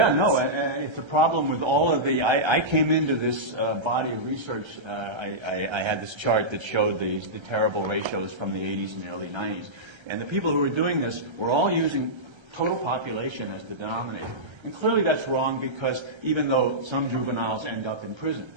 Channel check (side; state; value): left; late; 1.3 ms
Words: no, it's a problem with all of the, I came into this body of research, I had this chart that showed the terrible ratios from the 80s and the early 90s. And the people who were doing this were all using total population as the denominator. And clearly that's wrong, because even though some juveniles end up in prison,